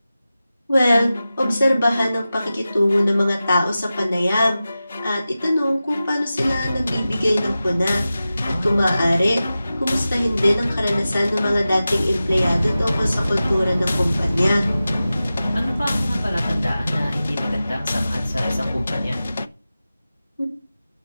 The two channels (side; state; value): both; inverted; correlation -0.94